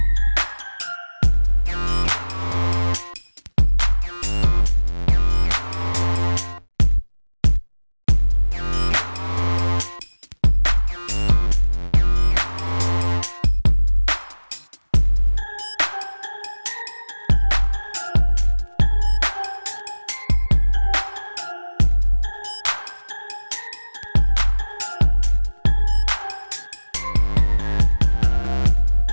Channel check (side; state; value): both; inverted; correlation -1.00